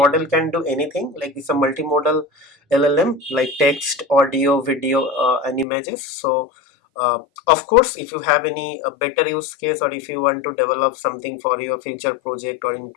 can do anything, like it's a multimodal LLM, like text, audio, video and images. So of course, if you have any better use case, or if you want to develop something for your future project or in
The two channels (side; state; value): right; drops out; at 5.7 s